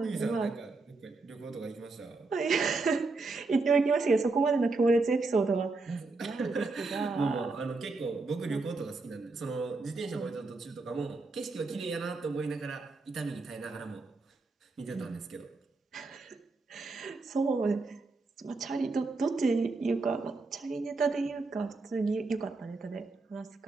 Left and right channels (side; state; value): left; quieter; 3.6 dB